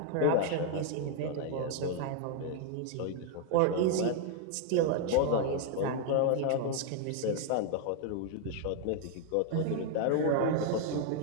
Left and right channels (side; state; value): both; different; correlation 0.00